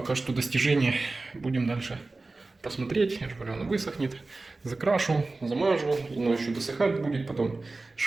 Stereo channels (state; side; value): quieter; left; 3.4 dB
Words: что достижения. Будем дальше посмотреть. Я же говорю, оно высохнет. Закрашу, замажу, но еще досыхать будет. Потом